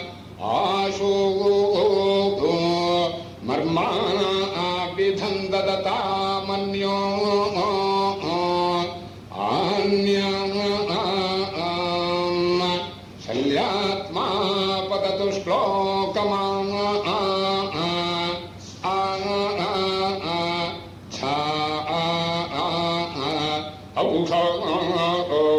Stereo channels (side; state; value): both; identical; correlation 1.00